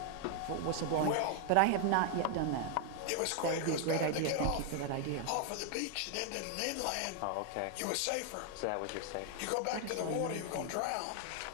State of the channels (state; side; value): different; both; correlation 0.00